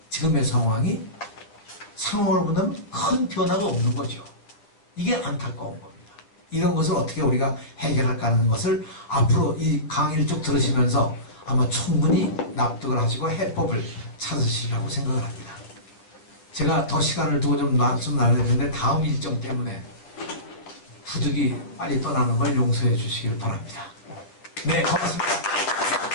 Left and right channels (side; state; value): right; late; 9.7 ms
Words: 지금의 상황을 보면 큰 변화가 없는 거죠. 이게 안타까운 겁니다. 이런 것을 어떻게 우리가 해결할까 하는 것을 앞으로 이 강의를 쭉 들으시면서 아마 충분히 납득을 하시고 해법을 찾으시리라고 생각을 합니다. 제가 더 시간을 두고 좀 말씀 나눠야 되는데 다음 일정 때문에 부득이 빨리 떠나는 걸 용서해 주시길 바랍니다. 네, 고맙습니다.